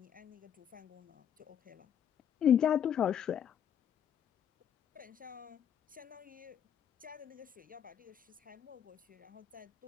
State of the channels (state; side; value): quieter; right; 9.1 dB